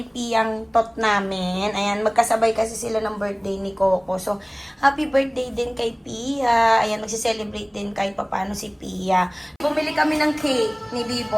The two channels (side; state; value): both; identical; correlation 1.00